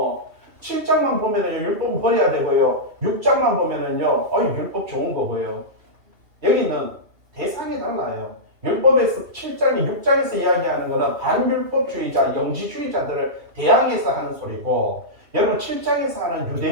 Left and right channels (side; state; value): left; late; 2.7 ms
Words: 7장만 보면은요, 율법은 버려야 되고요. 6장만 보면은요, 율법 좋은 거고요. 여기는 대상이 달라요. 율법에서 7장이 6장에서 이야기하는 거는 반율법주의자, 영지주의자들을 대항해서 하는 소리고, 여러분 7장에서 하는